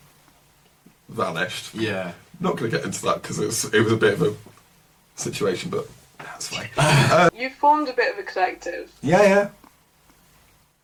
vanished. Yeah. Not going to get into that because it was a bit of a situation, but that's fine. You formed a bit of a collective. Yeah.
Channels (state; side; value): identical; both; correlation 1.00